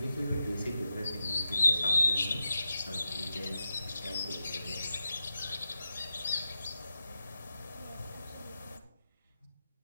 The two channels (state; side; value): inverted; both; correlation -0.88